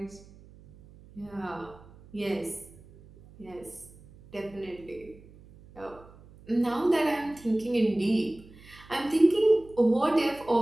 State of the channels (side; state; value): right; noise; hum, 23 dB below the sound